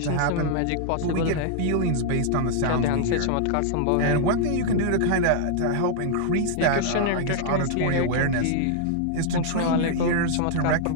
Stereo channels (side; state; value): both; different; correlation -0.01